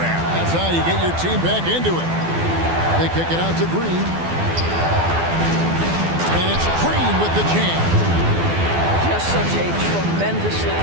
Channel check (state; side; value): late; left; 12 ms